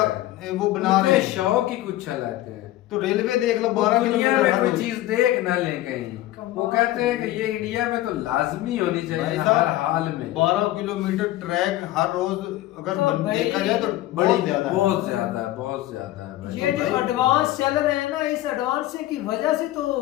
वो बना रहे हैं, शौक ही कुछ अलग है। तो रेलवे देख लो 12 किलोमीटर में कोई चीज देख ना ले कहीं, वो कहते हैं कि ये इंडिया में तो लाजमी होनी चाहिए हर हाल में। 12 किलोमीटर ट्रैक हर रोज अगर देखा जाए तो बहुत ज्यादा है। ये जो एडवांस चल रहे हैं ना, इस एडवांस की वजह से तो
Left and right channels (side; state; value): right; quieter; 15.5 dB